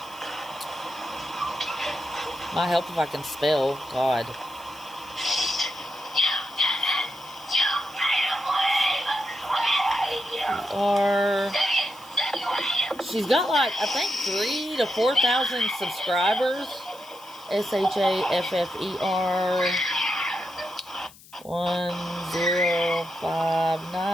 Might help if I can spell. God. She's got like, I think 3,000 to 4,000 subscribers. SHAFFER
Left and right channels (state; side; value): noise; left; hiss, 22 dB below the sound